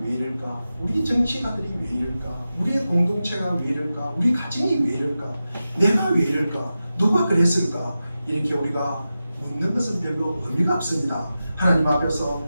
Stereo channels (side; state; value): both; inverted; correlation -0.93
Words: 이럴까? 우리 정치가들이 왜 이럴까? 우리의 공동체가 왜 이럴까? 우리 가정이 왜 이럴까? 내가 왜 이럴까? 누가 그랬을까? 이렇게 우리가 묻는 것은 별로 의미가 없습니다. 하나님 앞에서